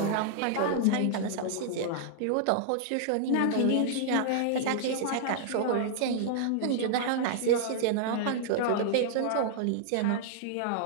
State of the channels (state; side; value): different; both; correlation -0.01